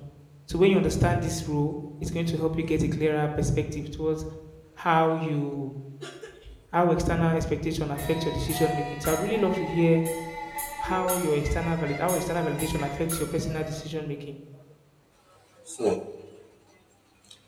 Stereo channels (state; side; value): identical; both; correlation 1.00